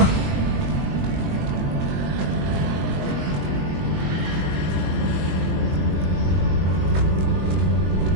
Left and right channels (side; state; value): left; late; 21 ms